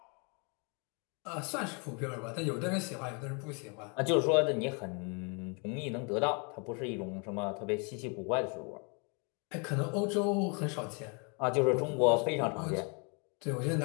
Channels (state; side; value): quieter; right; 35.0 dB